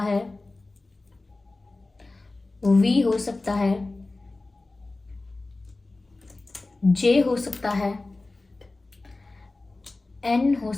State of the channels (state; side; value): quieter; right; 3.2 dB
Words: है, वी हो सकता है, जे हो सकता है, एन हो